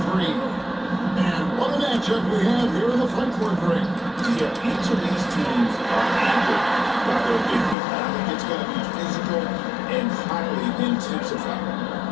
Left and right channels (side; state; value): right; drops out; at 7.8 s